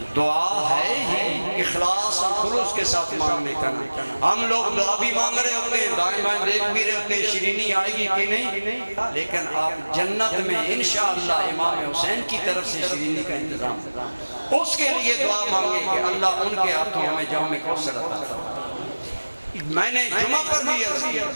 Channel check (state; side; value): inverted; both; correlation -1.00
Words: دعا ہے ہی اخلاص اور خلوص کے ساتھ مانگنے کا. ہم لوگ دعا بھی مانگ رہے ہوتے ہیں, دائیں بائیں دیکھ بھی رہے ہوتے ہیں شیرینی آئے گی کہ نہیں, لیکن آپ جنت میں انشاءاللہ امام حسین کی طرف سے شیرینی کا انتظام اس کے لیے دعا مانگیں کہ اللہ ان کے ہاتھوں ہمیں جام کوثر عطا فرمائے. میں نے جمعہ پر بھی عرض کیا,